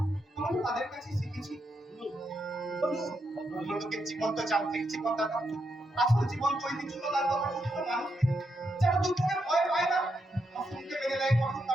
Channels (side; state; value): both; normal; correlation 0.82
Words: আমি তো তাদের কাছে শিখেছি। লোকের জীবন তো জানতে জীবন দাদা, আসল জীবন তো ঐতিহ্যতার কথা বলতে মানুষ যারা দুঃখকে ভয় পায় না, অসুখকে মেনে নেয় কঠোর